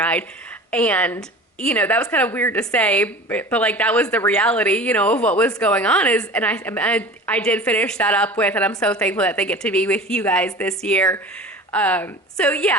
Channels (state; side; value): normal; both; correlation 0.38